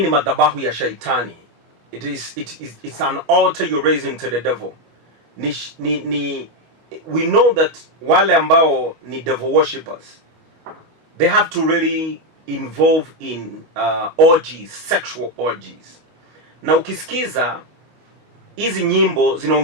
ni madhabahu ya shaitani. It's an altar you're raising to the devil. We know that wale ambao ni devil worshippers, they have to really involve in orgies, sexual orgies. Na ukisikiza hizi nyimbo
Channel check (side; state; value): left; late; 25 ms